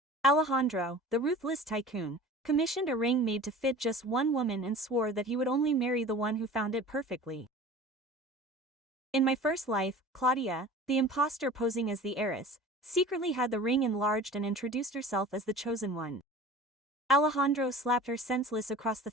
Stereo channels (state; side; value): normal; both; correlation 0.40